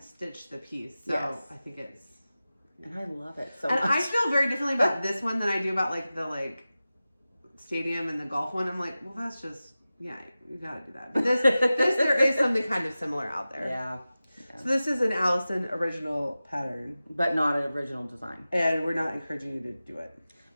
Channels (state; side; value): inverted; both; correlation -0.95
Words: stitched the piece. So yes. I think it's And I love it so and much. I feel very differently about this one than I do about like the like stadium and the golf one. I'm like, well, that's just, yeah, you gotta do that. But this there is something kind of similar out there. Yeah. So this is an Allison original pattern, but not an original design. And we're not encouraging you to do it.